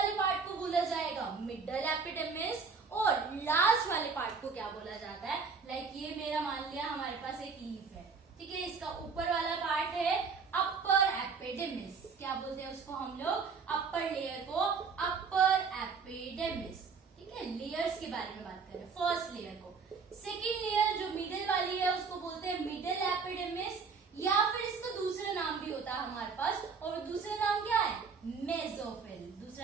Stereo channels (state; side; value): quieter; left; 5.2 dB